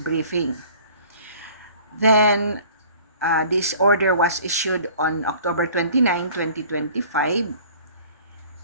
briefing. Then, this order was issued on October 29, 2025,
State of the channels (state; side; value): inverted; both; correlation -0.49